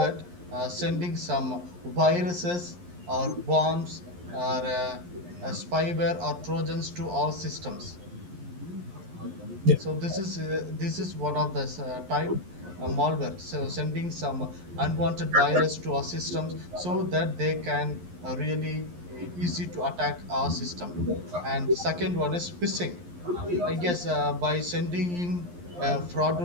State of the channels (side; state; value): left; late; 11 ms